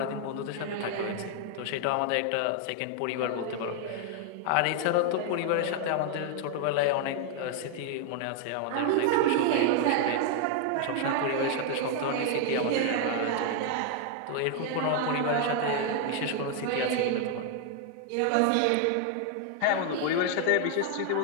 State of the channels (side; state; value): both; different; correlation 0.00